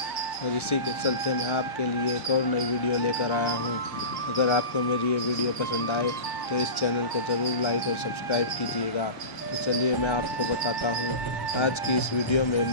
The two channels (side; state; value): right; late; 1.3 ms